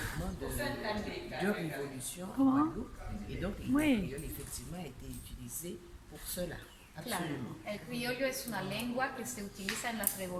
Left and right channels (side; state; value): both; identical; correlation 1.00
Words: de révolution en Guadeloupe, et donc le créole effectivement a été utilisé pour cela. Claro, el criollo es una lengua que se utiliza en las